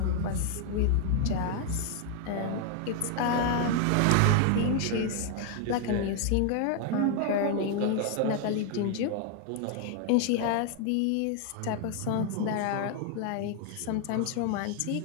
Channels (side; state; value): both; different; correlation 0.00